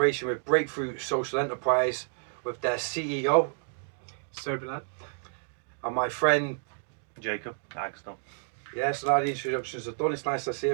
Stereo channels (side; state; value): left; silent; digital silence